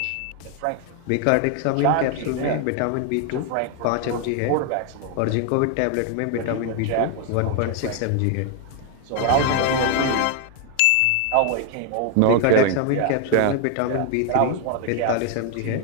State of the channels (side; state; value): both; different; correlation 0.01